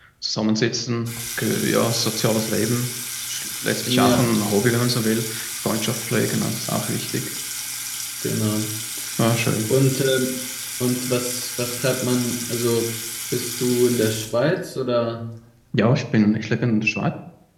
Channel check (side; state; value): both; identical; correlation 1.00